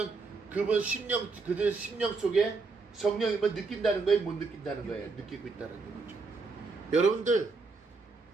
그들 심령 속에 성령님을 느낀다는 거예요, 못 느낀다는 거예요? 느끼고 있다는 거죠. 여러분들,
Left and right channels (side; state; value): left; quieter; 4.1 dB